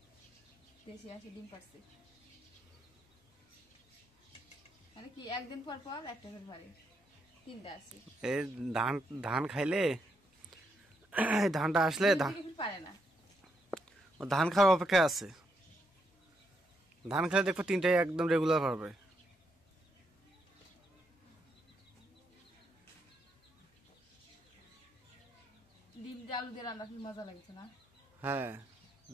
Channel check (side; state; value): both; normal; correlation 0.78